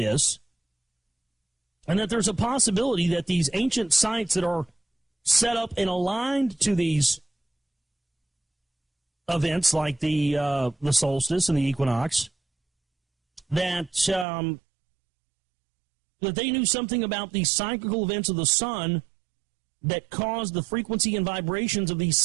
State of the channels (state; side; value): drops out; left; at 14.2 s